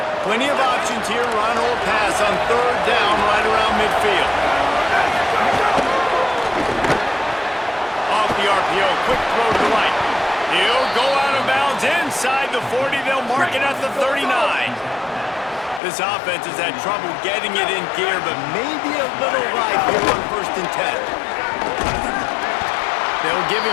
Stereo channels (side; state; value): right; drops out; at 15.8 s